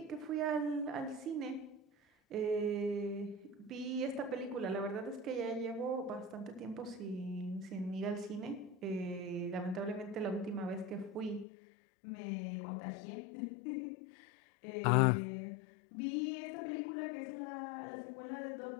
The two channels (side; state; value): right; drops out; at 11.5 s